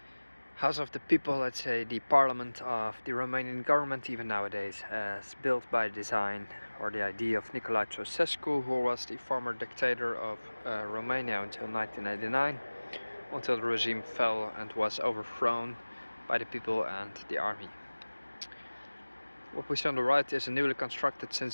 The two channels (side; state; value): both; inverted; correlation -1.00